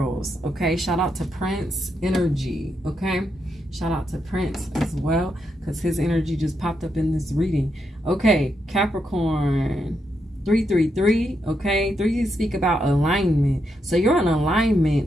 Okay, shout out to Prince energy. Okay, shout out to Prince as well, because his energy just popped up in this reading. Okay, Capricorn 333. Okay, 3 speak about alignment. So you're in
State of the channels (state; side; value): normal; both; correlation 0.82